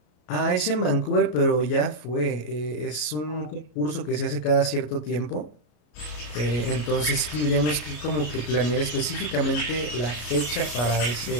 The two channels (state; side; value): late; right; 34 ms